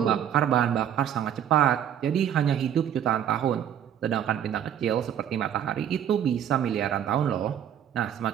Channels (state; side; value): quieter; left; 9.7 dB